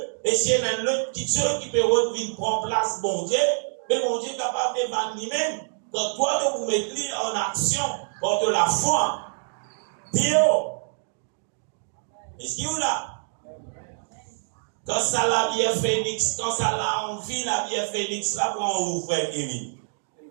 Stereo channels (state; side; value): silent; left; digital silence